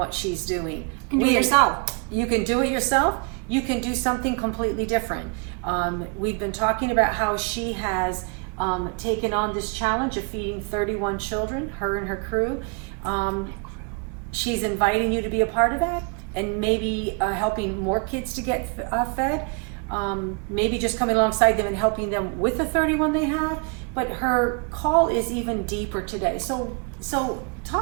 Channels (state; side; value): quieter; left; 34.7 dB